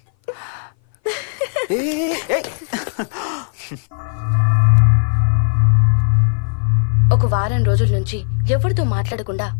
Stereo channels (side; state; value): right; silent; 60 dB below the other